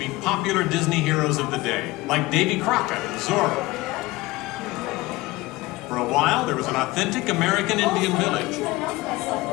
popular Disney heroes of the day, like Davy Crockett and Zorro. For a while, there was an authentic American Indian village.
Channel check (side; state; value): right; quieter; 20.2 dB